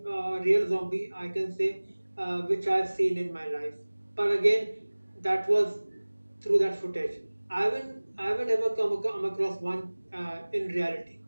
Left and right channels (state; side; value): inverted; both; correlation -1.00